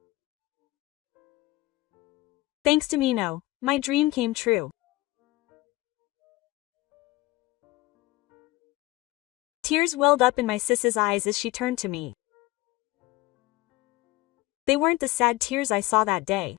Thanks to Mino, my dream came true. Tears welled up in my sis's eyes as she turned to me. They weren't the sad tears I saw that day.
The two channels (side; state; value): right; quieter; 19.2 dB